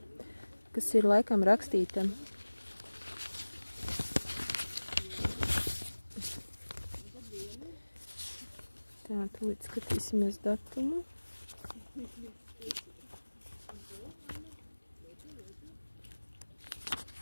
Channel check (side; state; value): both; inverted; correlation -1.00